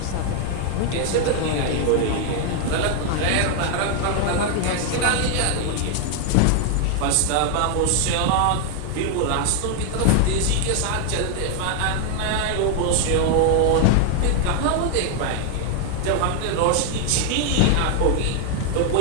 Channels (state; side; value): different; both; correlation 0.00